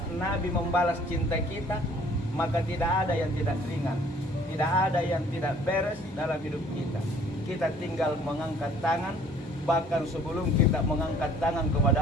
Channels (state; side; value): normal; both; correlation 0.56